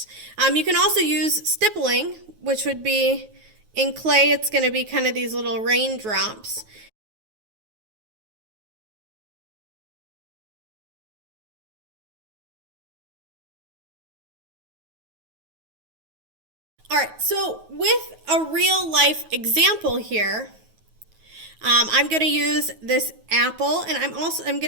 You can also use stippling, which would be, in clay, it's going to be kind of these little raindrops. All right, so with a real life example here, I'm going to use this apple, and I'm going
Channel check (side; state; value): left; late; 9.3 ms